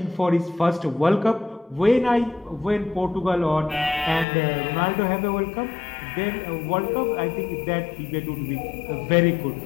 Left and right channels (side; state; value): right; drops out; at 4.2 s